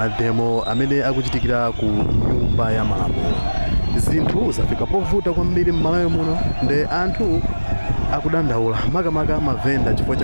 amene akuchitikira ku nyumba ya malamulo. Zinthu zafika povuta kwambiri m'Malawi muno, nde anthu akudandaula makamaka mavenda chifukwa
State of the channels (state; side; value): inverted; both; correlation -1.00